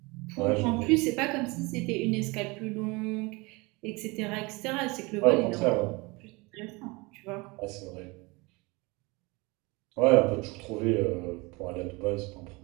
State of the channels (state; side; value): quieter; left; 25.6 dB